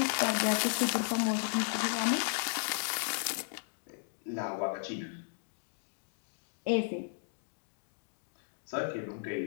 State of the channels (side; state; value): right; silent; digital silence